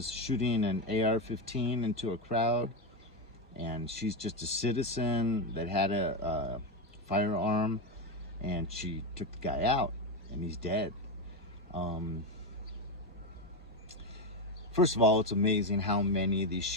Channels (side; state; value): both; normal; correlation 0.11